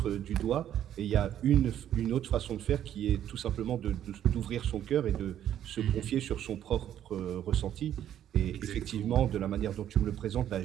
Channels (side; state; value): left; quieter; 10.8 dB